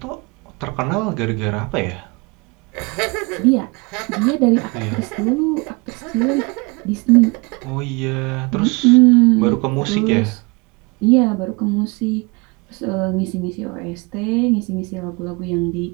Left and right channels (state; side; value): quieter; left; 28.1 dB